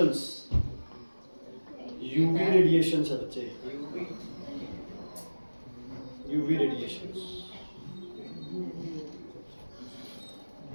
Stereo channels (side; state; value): both; inverted; correlation -1.00